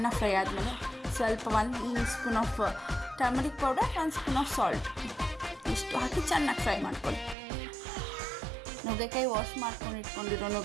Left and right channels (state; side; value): drops out; left; at 7.4 s